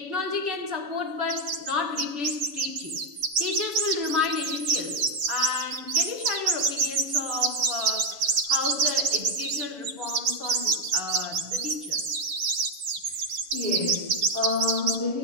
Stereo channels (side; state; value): left; late; 7.0 ms